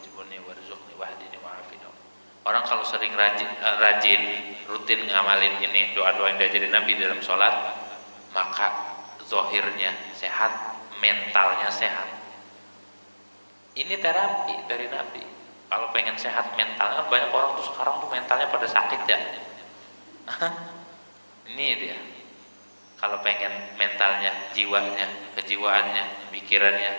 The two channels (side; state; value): both; inverted; correlation -1.00